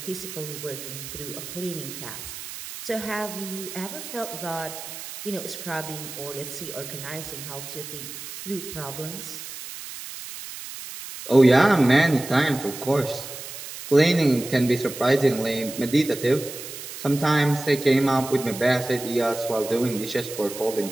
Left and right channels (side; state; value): right; noise; hiss, 11 dB below the sound